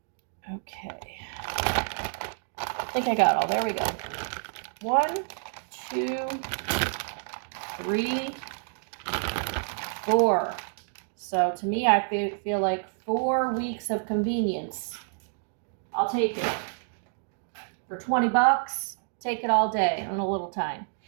Okay. I think I got all. There we go. 1, 2, 3, 4. So to me, I feel like 4 weeks of convenience. I'll take it. For $20, take it all day and a little time.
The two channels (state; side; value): silent; left; digital silence